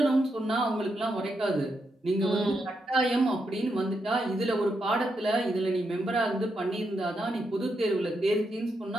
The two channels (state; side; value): normal; both; correlation 0.82